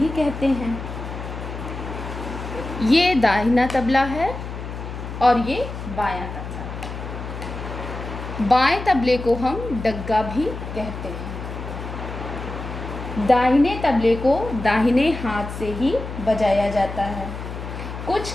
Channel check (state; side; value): noise; left; hum, 8 dB below the sound